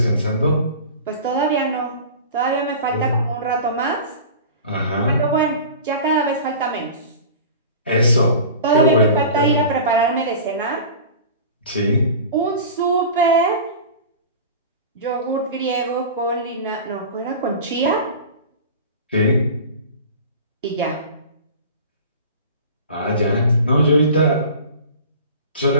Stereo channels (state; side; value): inverted; both; correlation -0.36